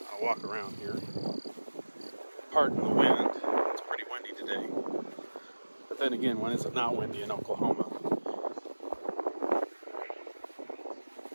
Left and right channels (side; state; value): both; inverted; correlation -1.00